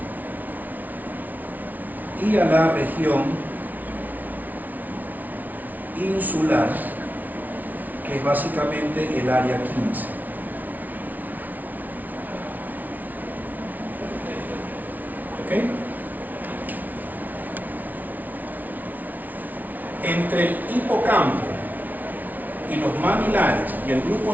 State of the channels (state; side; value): late; left; 0.079 ms